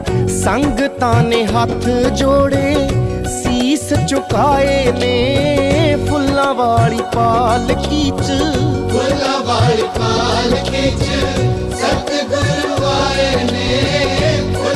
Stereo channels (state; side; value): identical; both; correlation 1.00